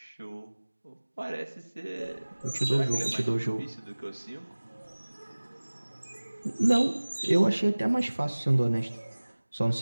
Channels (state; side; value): inverted; both; correlation -1.00